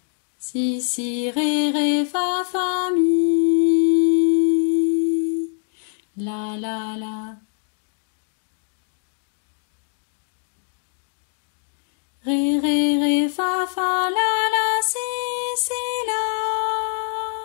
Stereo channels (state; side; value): silent; right; digital silence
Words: Si, si, ré, ré, fa, fa, mi. La, la, la. Ré, ré, ré, fa, fa, la, si, si, la.